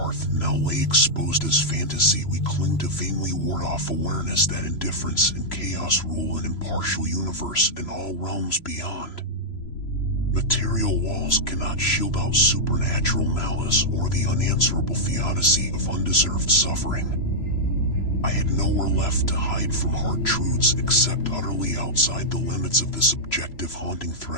now lay exposed as fantasy. We cling to vainly ward off awareness that indifference and chaos rule an impartial universe in all realms beyond. Material walls cannot shield out supernatural malice or the unanswerable theodicy of undeserved suffering. I had nowhere left to hide from hard truths except utterly outside the limits of this objective haunting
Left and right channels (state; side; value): late; right; 3.0 ms